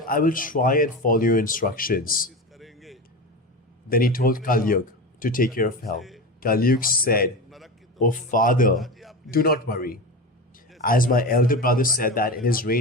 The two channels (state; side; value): normal; both; correlation 0.24